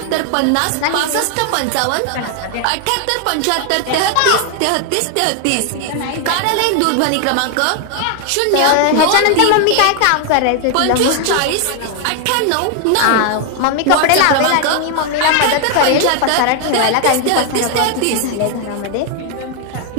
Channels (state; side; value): different; both; correlation 0.00